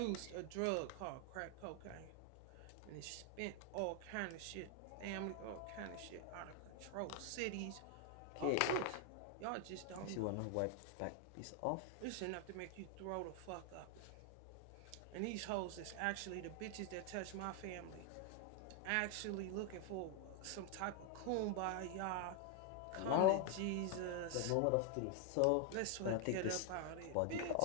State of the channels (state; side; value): different; both; correlation 0.00